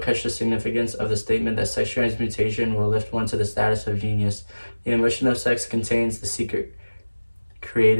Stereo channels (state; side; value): inverted; both; correlation -1.00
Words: the significance of the statement that sex transmutation will lift one to the status of genius. The emotion of sex contains the secret